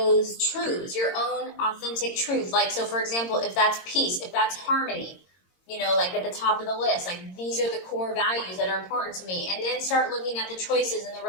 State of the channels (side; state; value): right; late; 22 ms